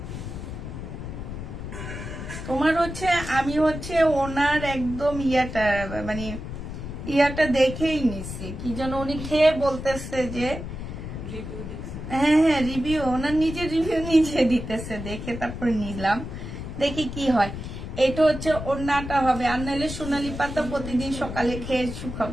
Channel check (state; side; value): noise; left; rumble, 8 dB below the sound